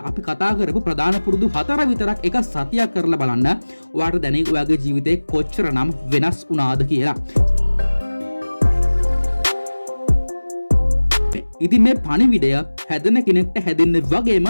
අපි කතා කරපු ප්‍රධාන පුරුදු 4 විතරක් එක සතියක් කරලා බලන්න. ඔයාට දැනෙයි ඔයාගේ ජීවිතේ කොච්චරනම් වෙනස් වුණාද කියලා. ඉතින් මේ පණිවිඩය හැදෙන කෙනෙක්ට හැදෙන්න වගේම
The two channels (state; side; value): inverted; both; correlation -1.00